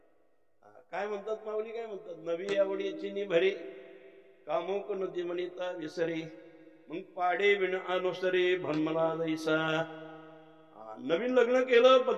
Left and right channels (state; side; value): identical; both; correlation 1.00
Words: काय म्हणतात माऊली, काय म्हणतात, नवी आवडीची निभरी कामुक नदी म्हणिता विसरी, मग पाडे विण अनुसरी भन्मला जैसा. नवीन लग्न केलं,